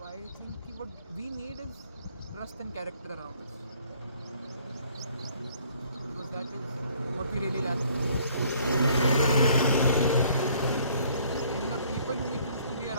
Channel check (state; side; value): inverted; both; correlation -0.60